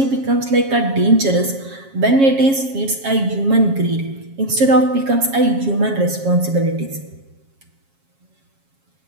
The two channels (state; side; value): late; left; 7.3 ms